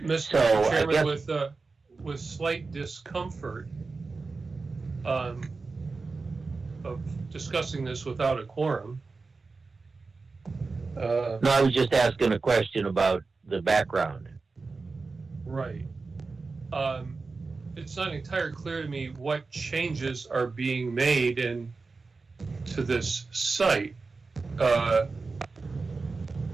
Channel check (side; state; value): left; quieter; 4.1 dB